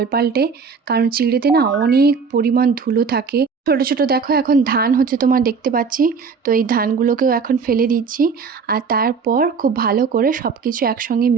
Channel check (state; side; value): quieter; left; 5.4 dB